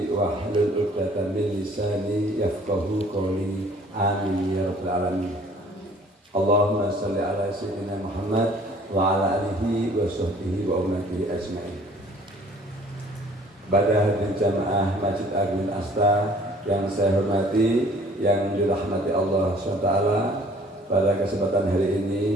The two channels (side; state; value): both; normal; correlation 0.54